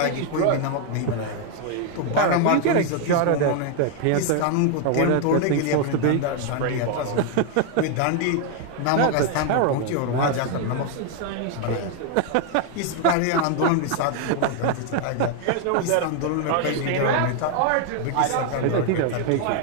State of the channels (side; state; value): both; different; correlation 0.00